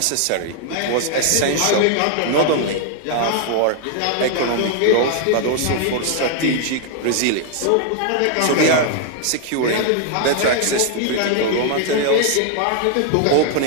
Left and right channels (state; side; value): different; both; correlation 0.00